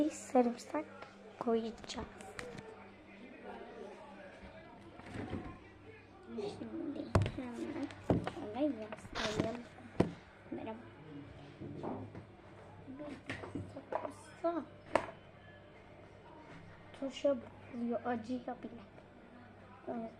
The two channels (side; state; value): both; identical; correlation 1.00